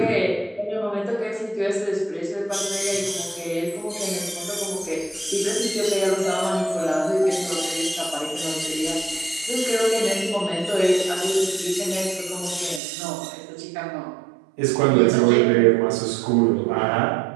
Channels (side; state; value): left; drops out; at 12.8 s